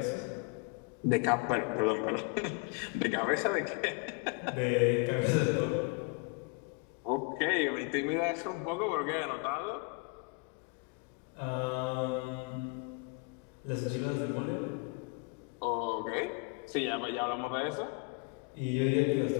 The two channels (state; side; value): quieter; right; 30.7 dB